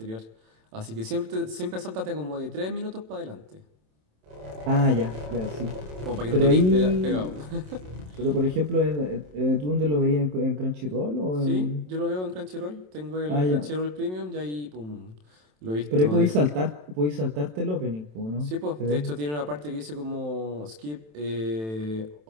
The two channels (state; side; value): late; left; 27 ms